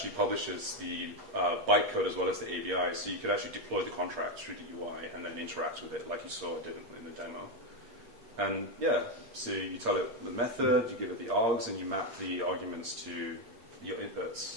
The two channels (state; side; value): late; left; 8.5 ms